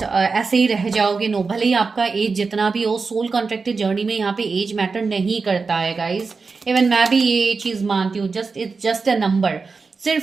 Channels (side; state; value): left; quieter; 4.5 dB